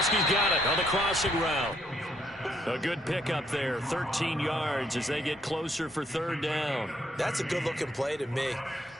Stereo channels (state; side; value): normal; both; correlation 0.71